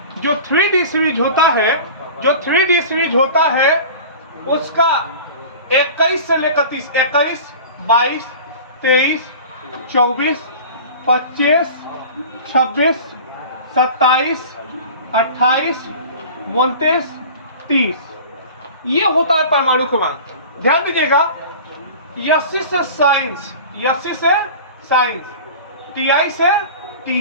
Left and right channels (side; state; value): both; inverted; correlation -0.38